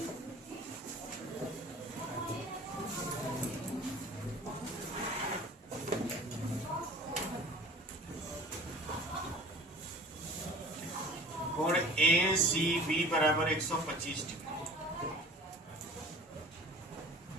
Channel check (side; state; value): both; normal; correlation 0.44